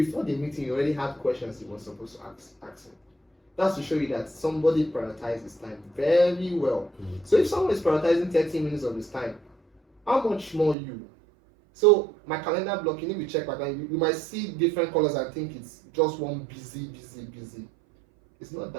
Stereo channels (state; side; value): drops out; left; at 10.8 s